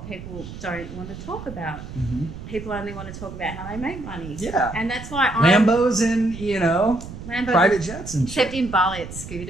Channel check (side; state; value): right; noise; rumble, 11 dB below the sound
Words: people don't want to talk about. People only want to talk about how they make money. Yeah. And that's why Lambos and, private jets and shit. Except in Bali, it's